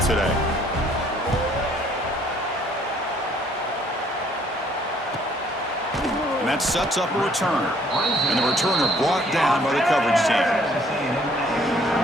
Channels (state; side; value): normal; both; correlation 0.61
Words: And that sets up a return. And the returner brought down by the coverage team.